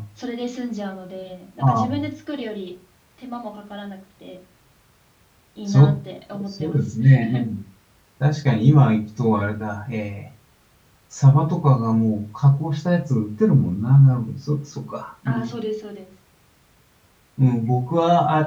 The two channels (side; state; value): both; identical; correlation 1.00